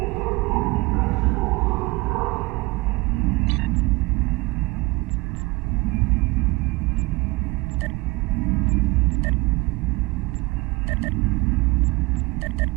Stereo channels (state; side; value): quieter; left; 23.5 dB